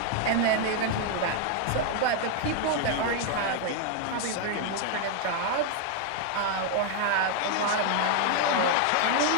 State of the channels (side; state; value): both; different; correlation 0.00